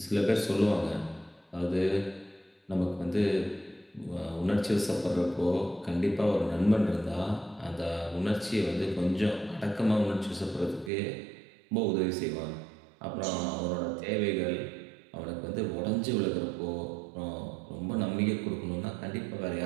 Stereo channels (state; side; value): drops out; left; at 10.9 s